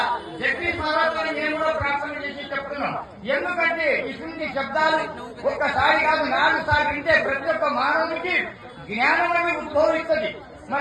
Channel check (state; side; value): identical; both; correlation 1.00